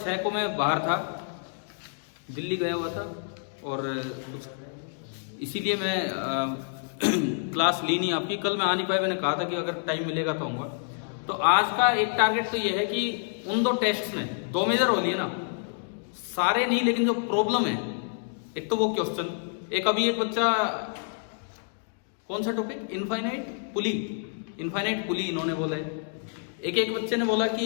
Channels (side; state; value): right; silent; digital silence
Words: को मैं बाहर था, दिल्ली गया हुआ था और कुछ इसीलिए मैं क्लास ली नहीं आपकी। कल मैं आ नहीं पाया, मैंने कहा था कि अगर टाइम मिलेगा तो आऊँगा। तो आज का एक टारगेट तो ये है कि उन 2 टेस्ट में 2 मेजर हो लिए ना, सारे नहीं लेकिन जो प्रॉब्लम है, एक तो वो क्वेश्चन, एक अभी एक बच्चा कौन सा टॉपिक, इनफाइनाइट पुली इन्होंने बोला है। एक बच्चे ने बोला